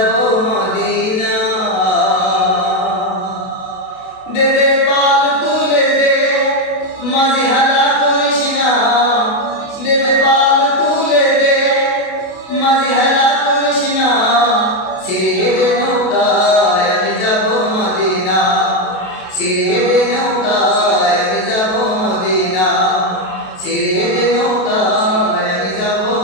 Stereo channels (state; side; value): late; right; 32 ms